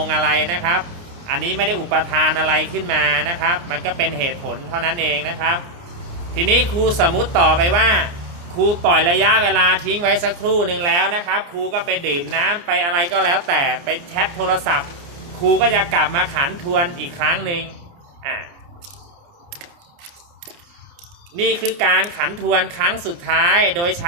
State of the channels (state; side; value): late; left; 29 ms